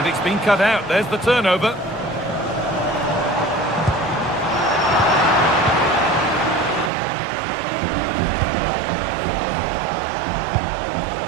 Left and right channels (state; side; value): drops out; left; at 6.9 s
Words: it's been cut out. There's the turnover.